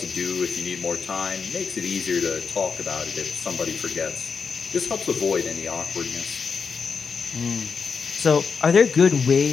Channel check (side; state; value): right; quieter; 5.6 dB